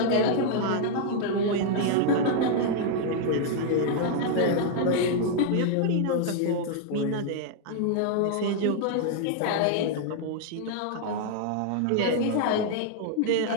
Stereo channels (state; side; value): different; both; correlation -0.01